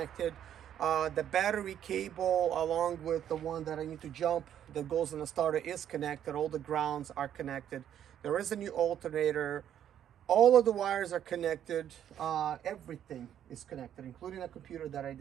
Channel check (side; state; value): left; quieter; 10.2 dB